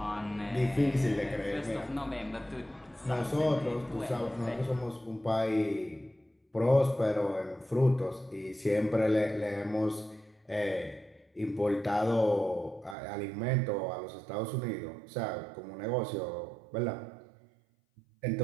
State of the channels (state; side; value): drops out; left; at 13.0 s